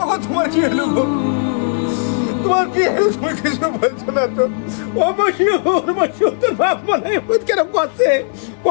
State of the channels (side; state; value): right; silent; digital silence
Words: ওগো, তোমার কি হলো গো? তোমার কি হলো? তুমি কিছু বলছো না তো? ও বসিও বসিও, তোর বাপ মানে কেন করছে?